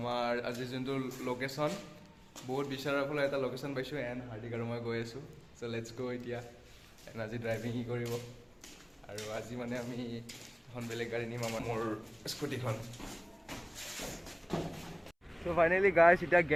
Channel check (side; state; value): both; identical; correlation 1.00